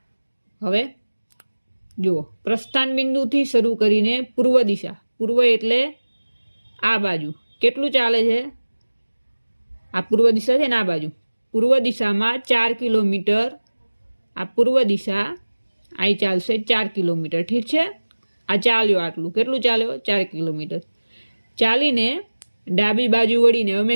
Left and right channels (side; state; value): both; inverted; correlation -1.00